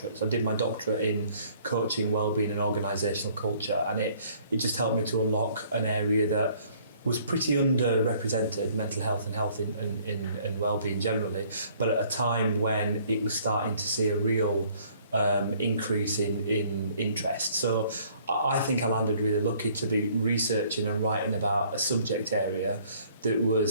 So I did my doctorate in coaching, wellbeing and organisational culture, and it just helped me to unlock an area that was pretty underrepresented, mental health and wellbeing generally, but at a time when it was starting to see a real increase in interest. So I think I landed really lucky to be researching and writing about a subject area that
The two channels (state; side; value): inverted; both; correlation -0.59